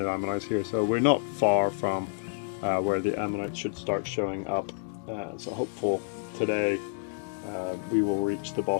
ammonites here, so we're not far from where the ammonites should start showing up. So hopeful today we will reach the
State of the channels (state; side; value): silent; right; digital silence